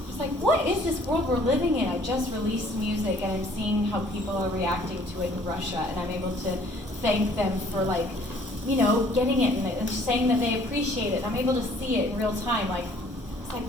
what is this world we're living in? I just released music and I'm seeing how people are reacting to it in Russia, and I'm able to thank them for getting it and saying that they appreciate it. I'm able to see it in real time. It's like,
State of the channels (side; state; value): both; normal; correlation 0.57